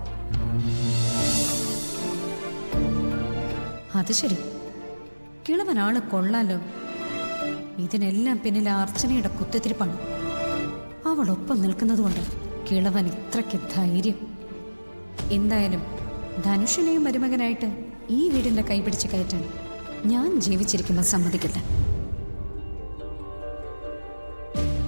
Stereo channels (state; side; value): inverted; both; correlation -1.00